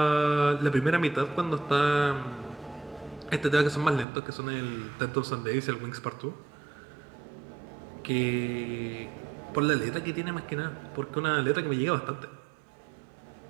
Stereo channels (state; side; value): drops out; left; at 4.0 s